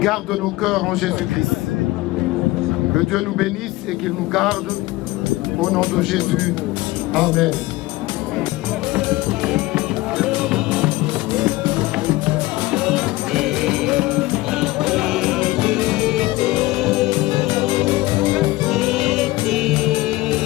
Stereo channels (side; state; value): right; quieter; 19.5 dB